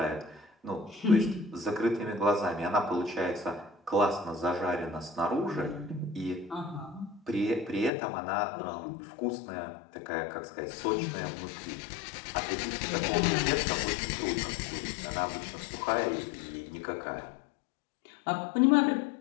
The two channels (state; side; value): drops out; right; at 7.9 s